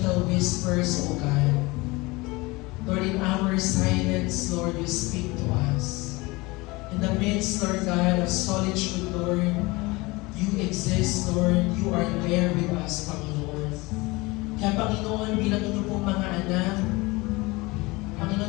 whispers, O God, Lord, in our silence, Lord, you speak to us. In the midst, Lord God, of solitude, Lord, you exist, Lord. You are there with us, Panginoon. Kaya, Panginoon, bilang inyo pong mga anak,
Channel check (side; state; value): right; quieter; 23.4 dB